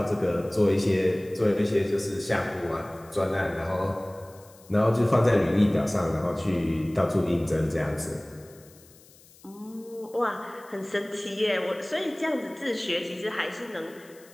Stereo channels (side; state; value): left; noise; hiss, 25 dB below the sound